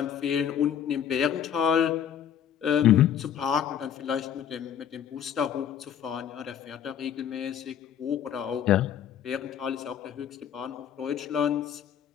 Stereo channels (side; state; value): right; quieter; 9.1 dB